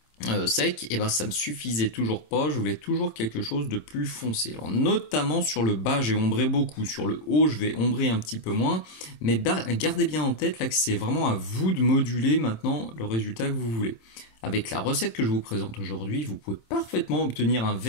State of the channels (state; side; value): late; right; 26 ms